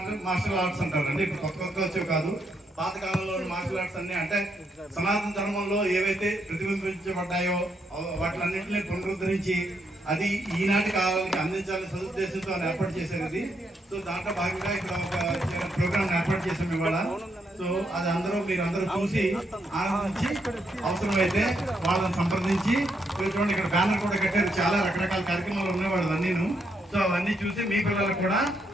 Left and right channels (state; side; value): normal; both; correlation 0.78